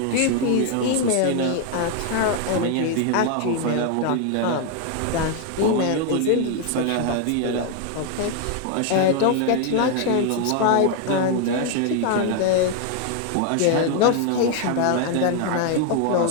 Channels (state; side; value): different; both; correlation 0.00